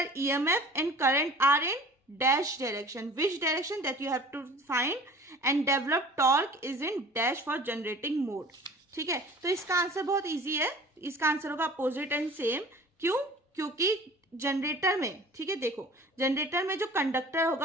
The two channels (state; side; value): normal; both; correlation 0.45